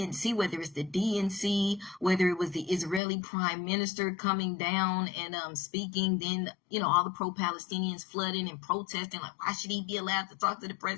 whether it's the DNC, whether it was the Israeli prime minister coming down and speaking, then, all the pro-Palestinians flooding and protesting, like, why should he be allowed to talk to the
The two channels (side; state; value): right; drops out; at 3.0 s